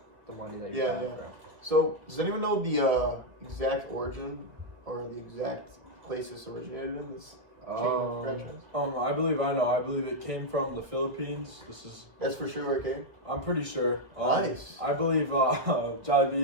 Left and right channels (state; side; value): late; left; 1.5 ms